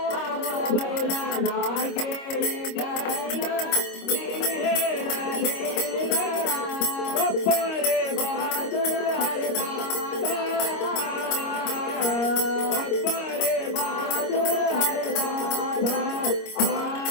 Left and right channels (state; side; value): late; right; 26 ms